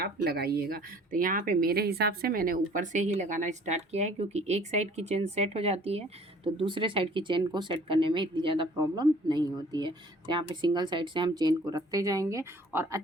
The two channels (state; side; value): normal; both; correlation 0.53